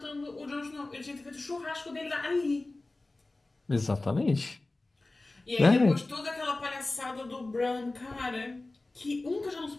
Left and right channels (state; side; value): quieter; right; 3.0 dB